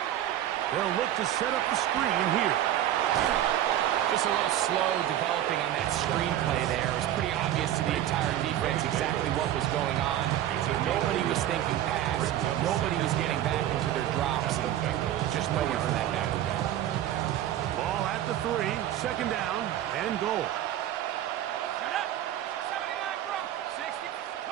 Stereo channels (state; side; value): quieter; left; 12.1 dB